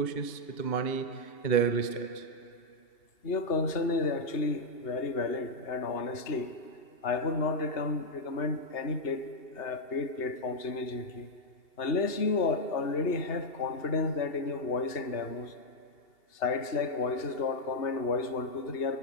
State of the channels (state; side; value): late; right; 2.8 ms